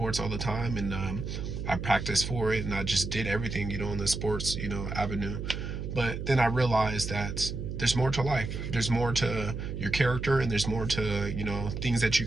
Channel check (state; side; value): noise; right; hum, 5 dB below the sound